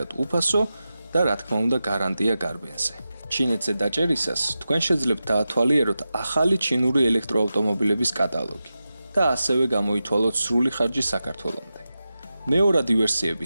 უფასო და რა თქმა უნდა გარანტია გარბენზე. ჩინეთზე დაჭერისას თქვენ შეძლებთ დაათვალიეროთ ახალი ჩინური ელექტროავტომობილების კატალოგი და ასევე გამოითვალოთ სრული ხარჯი საქართველომდე. მეორადი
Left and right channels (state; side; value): inverted; both; correlation -0.92